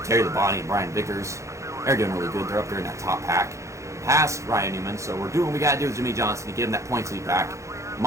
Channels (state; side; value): late; left; 0.15 ms